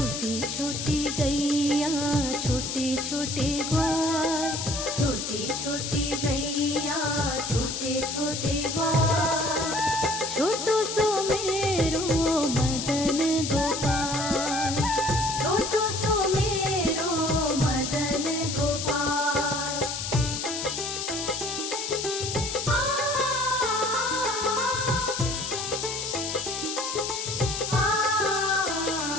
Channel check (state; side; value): noise; left; hiss, 4 dB below the sound